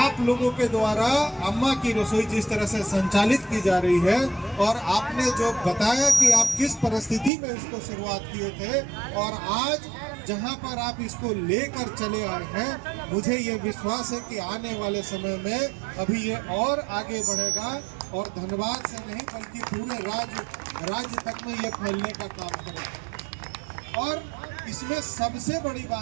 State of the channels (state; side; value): drops out; left; at 7.3 s